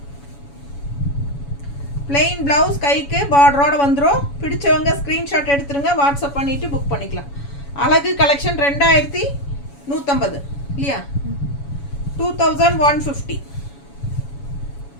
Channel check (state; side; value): late; right; 7.1 ms